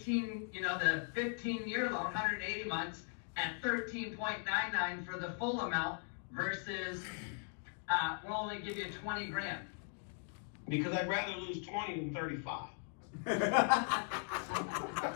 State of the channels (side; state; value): right; silent; 52 dB below the other